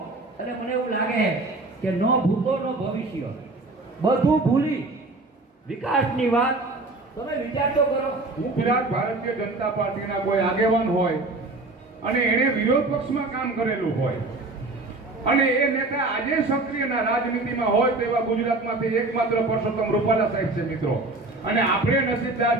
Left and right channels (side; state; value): left; quieter; 3.1 dB